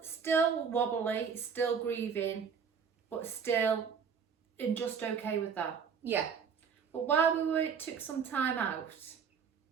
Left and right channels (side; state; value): left; quieter; 6.7 dB